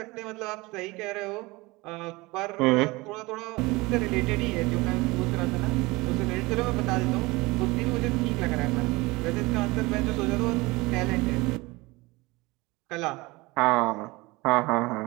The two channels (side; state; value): left; quieter; 22.7 dB